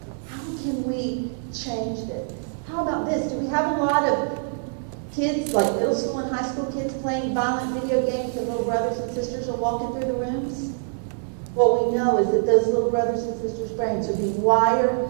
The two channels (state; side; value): silent; left; digital silence